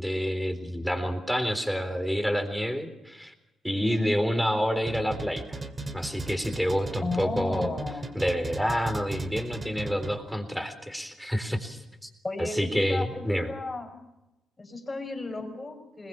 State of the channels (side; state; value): both; normal; correlation 0.95